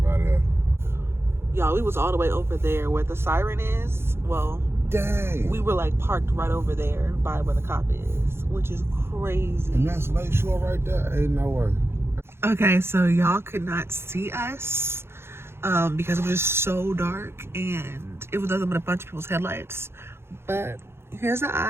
out of there. Y'all, we was all the way over there where the siren is. Well, dang. We were like parked right over there by where the cop is, which is crazy. And that's Lakeshore right there. Ain't no way. Okay, so y'all could not see us because it was just so dark and it was nothing but a bunch of people's headlights. But here's the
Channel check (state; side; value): late; left; 0.12 ms